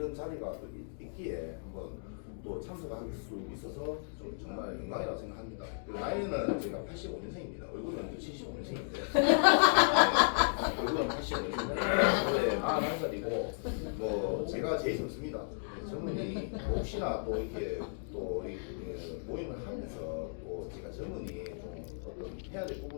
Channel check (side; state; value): right; silent; digital silence